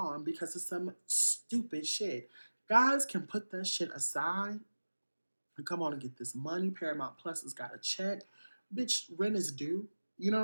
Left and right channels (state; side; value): inverted; both; correlation -1.00